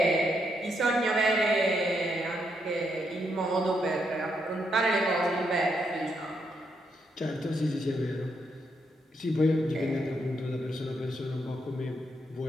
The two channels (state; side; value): normal; both; correlation 0.78